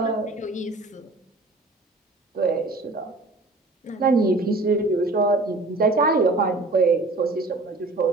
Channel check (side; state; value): left; quieter; 3.1 dB